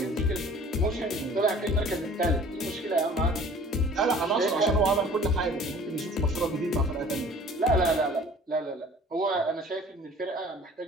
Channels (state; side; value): normal; both; correlation 0.49